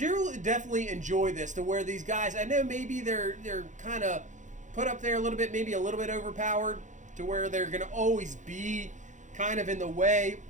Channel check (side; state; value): left; late; 0.36 ms